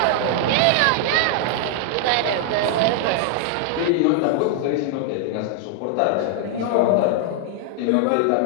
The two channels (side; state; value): both; different; correlation -0.01